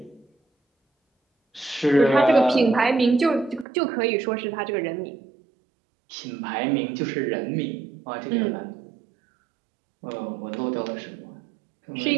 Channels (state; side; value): drops out; left; at 3.7 s